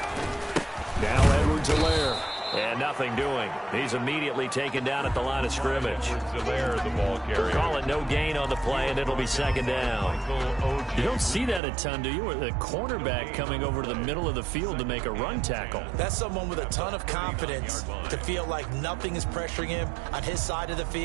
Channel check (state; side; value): drops out; left; at 11.6 s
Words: Now Edwards-Helaire. And nothing doing. He's immediately taken down at the line of scrimmage. The ball carrier. Call it no gain on the play, and it'll be 2nd down. You don't see that a ton, do you? Or the cornerback coming over to the middle of the field to make a run tackle. That's someone with a ton of confidence to feel like nothing is pressuring him on his side of the